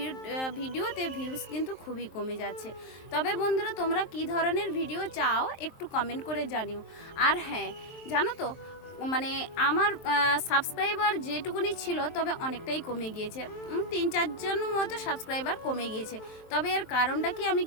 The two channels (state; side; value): late; right; 23 ms